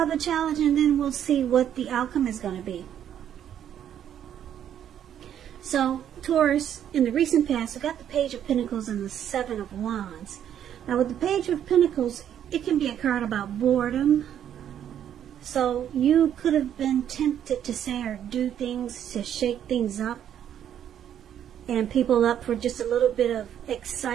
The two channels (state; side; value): quieter; left; 9.9 dB